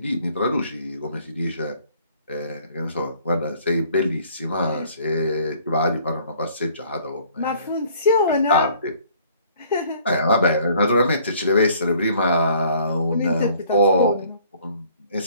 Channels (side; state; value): both; inverted; correlation -0.58